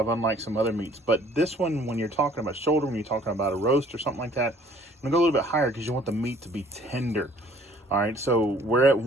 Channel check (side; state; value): both; normal; correlation 0.57